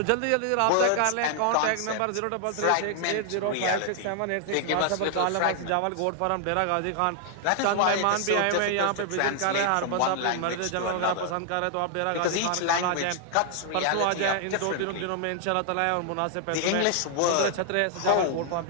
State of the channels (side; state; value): both; different; correlation 0.00